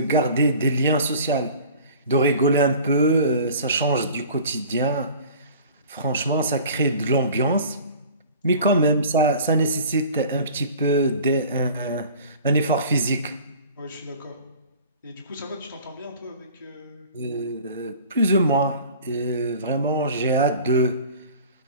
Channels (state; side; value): inverted; both; correlation -0.44